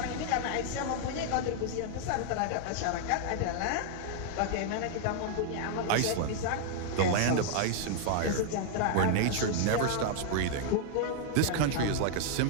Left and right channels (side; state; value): both; different; correlation -0.01